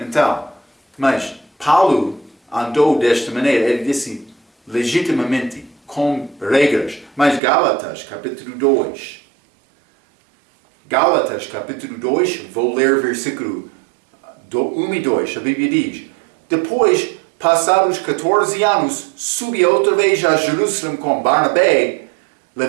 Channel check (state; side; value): drops out; left; at 7.4 s